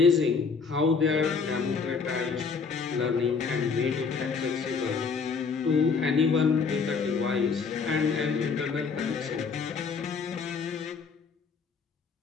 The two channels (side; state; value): right; quieter; 5.3 dB